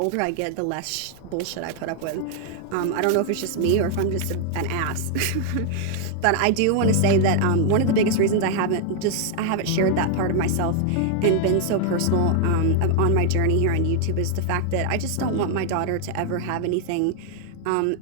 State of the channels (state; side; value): different; both; correlation 0.00